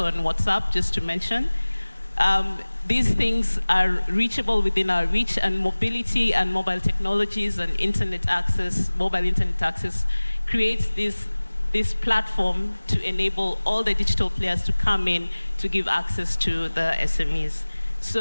WhatsApp, just to mention. These things are reachable within our reach, and mobility and mobile technologies and internet access, mobile internet access, creates this platform to enable all the digital players to come in to give access to the SMEs.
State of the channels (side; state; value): both; inverted; correlation -1.00